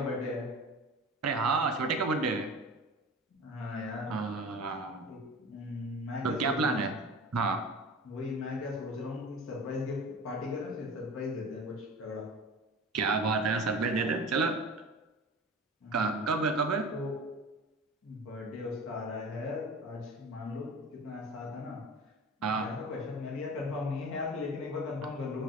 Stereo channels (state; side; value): normal; both; correlation 0.36